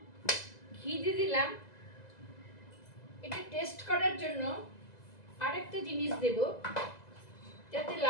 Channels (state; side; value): late; right; 2.0 ms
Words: ঘি দিয়ে দিলাম। এটা টেস্ট করার জন্য আরেকটা জিনিস দেব, যাতে